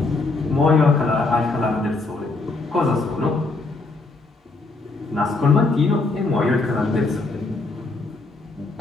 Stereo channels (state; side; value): quieter; right; 3.5 dB